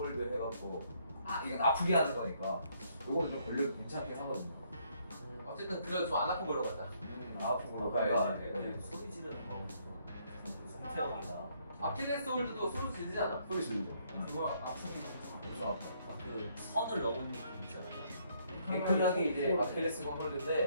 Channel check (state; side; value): inverted; both; correlation -0.69